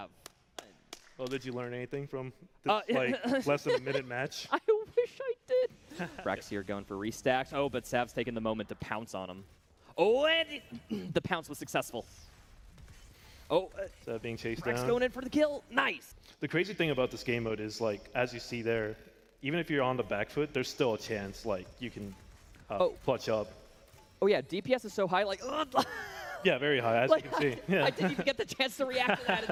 Oh, did you learn anything from this like less than a minute match? I wish I did. Brax here going for restacks. Oh, but Sav's taking the moment to pounce on him. Oh, and the pounce was successful. Oh, That being chased Brax down. going in for the kill. Nice. The crazy thing about this game mode is like, as you see there, even if you're on the back foot, there's still a chance like you can clutch up. Oh yeah, DPS is so high. Like, Yeah, very high, as you can see. Yeah. I didn't even get the chance to react to that,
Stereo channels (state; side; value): identical; both; correlation 1.00